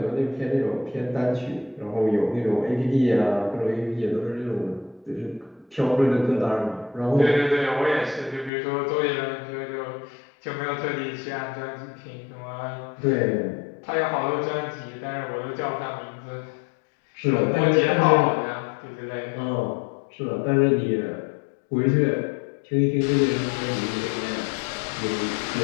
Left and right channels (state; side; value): drops out; right; at 8.5 s